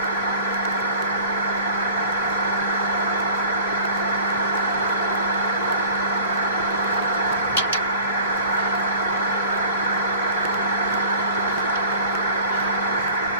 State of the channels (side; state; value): both; inverted; correlation -0.44